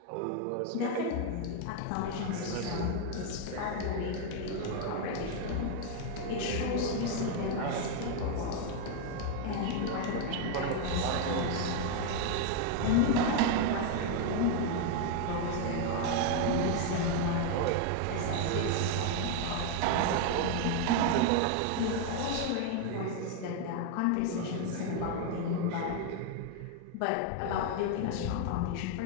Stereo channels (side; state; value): both; different; correlation 0.00